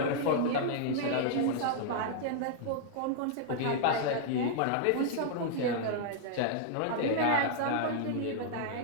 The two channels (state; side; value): different; both; correlation -0.01